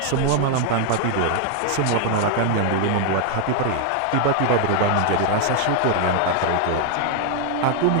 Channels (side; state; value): both; different; correlation 0.00